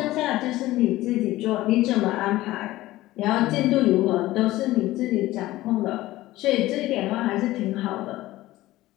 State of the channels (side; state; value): right; quieter; 16.9 dB